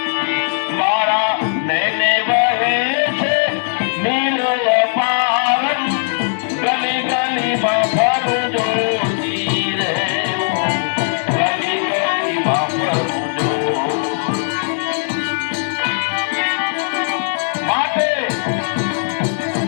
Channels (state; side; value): silent; right; digital silence